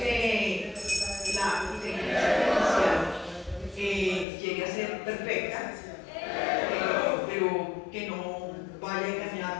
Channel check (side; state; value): right; drops out; at 4.2 s